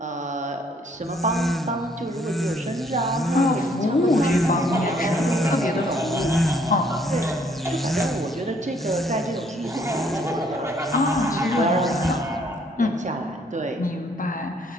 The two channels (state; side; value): normal; both; correlation 0.65